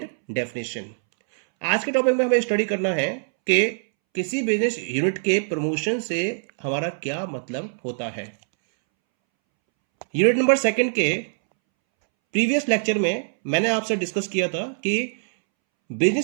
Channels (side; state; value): left; silent; 63 dB below the other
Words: definition. आज के topic में हमें study करना है कि किसी business unit के promotion से हमारा क्या मतलब होता है। यूनिट नंबर सेकंड के प्रीवियस लेक्चर में मैंने आपसे डिस्कस किया था कि